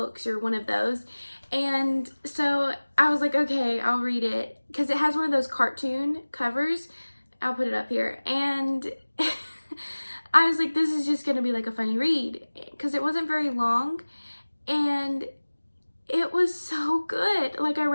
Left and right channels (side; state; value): both; inverted; correlation -1.00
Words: or one of those. And so I was like, okay, I'll read it, because it has one of those cartoon covers. I'll put it up here. And I was like, this is just gonna be like a funny read, because it wasn't very long, and it was so good. Like, I